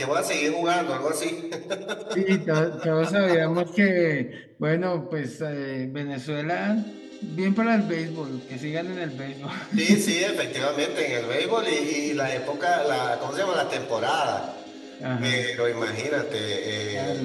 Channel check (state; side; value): identical; both; correlation 1.00